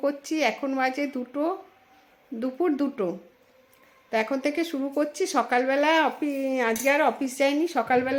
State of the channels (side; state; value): both; identical; correlation 1.00